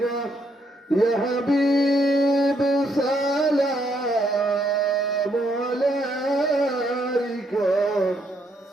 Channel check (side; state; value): both; normal; correlation 0.74